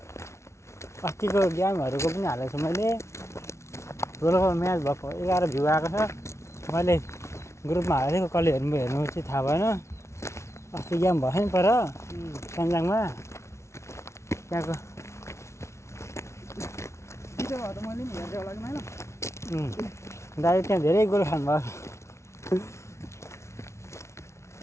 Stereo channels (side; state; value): right; late; 0.13 ms